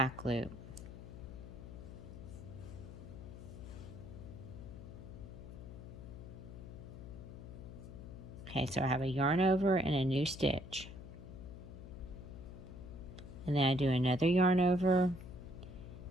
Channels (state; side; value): noise; left; hum, 12 dB below the sound